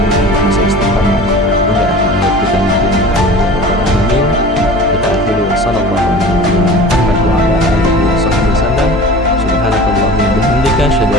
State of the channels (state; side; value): normal; both; correlation 0.39